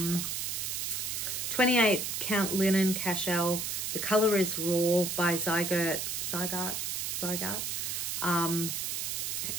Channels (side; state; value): right; noise; hiss, 2 dB below the sound